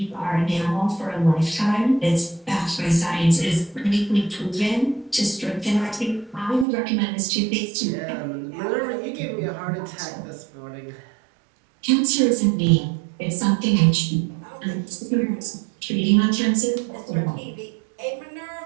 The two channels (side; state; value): left; drops out; at 6.7 s